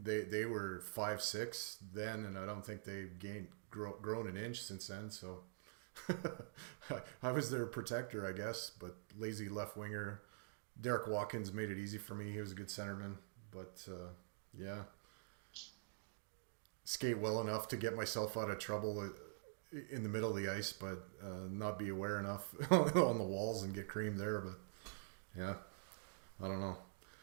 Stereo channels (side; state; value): left; silent; digital silence